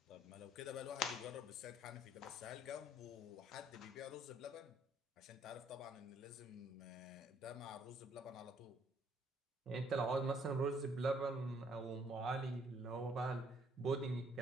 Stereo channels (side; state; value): both; normal; correlation 0.65